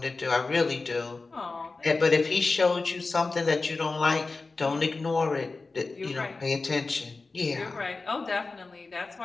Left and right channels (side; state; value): right; quieter; 3.8 dB